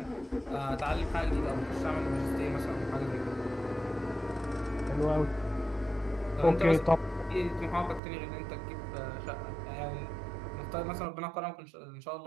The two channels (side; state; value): left; drops out; at 8.0 s